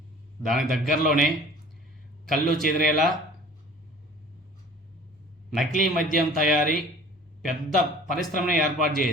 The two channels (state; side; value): normal; both; correlation 0.46